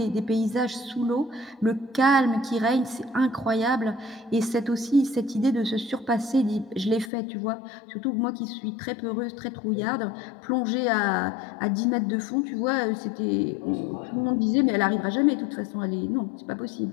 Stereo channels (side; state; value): right; drops out; at 7.1 s